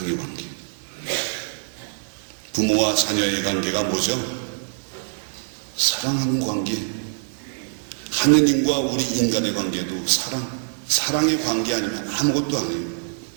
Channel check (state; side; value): silent; left; digital silence